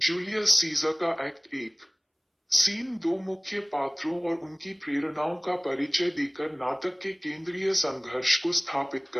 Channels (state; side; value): identical; both; correlation 1.00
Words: सीजर का एक्ट 1 सीन 2 मुख्य पात्रों और उनकी प्रेरणाओं का परिचय देकर नाटक के केंद्रीय संघर्ष को स्थापित